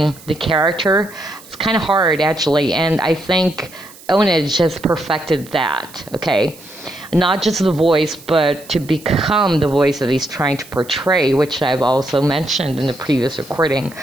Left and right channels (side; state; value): right; noise; hiss, 21 dB below the sound